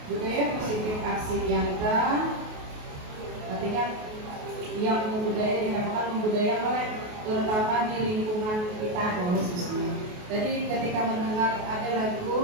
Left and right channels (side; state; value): left; late; 28 ms